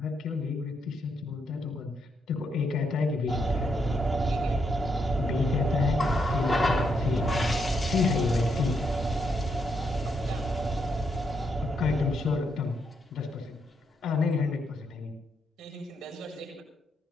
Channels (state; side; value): normal; both; correlation 0.78